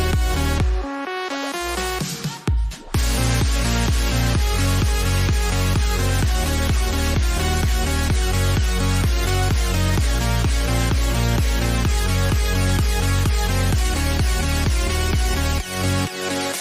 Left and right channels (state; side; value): identical; both; correlation 1.00